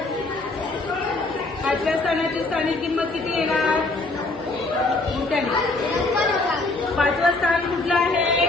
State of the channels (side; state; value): right; quieter; 3.2 dB